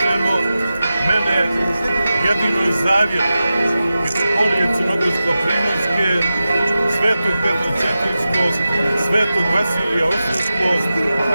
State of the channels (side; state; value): both; inverted; correlation -0.93